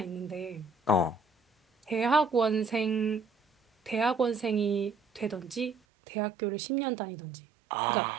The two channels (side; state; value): left; drops out; at 5.8 s